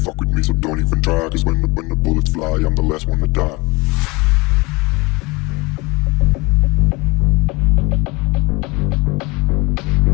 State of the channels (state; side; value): quieter; right; 25.1 dB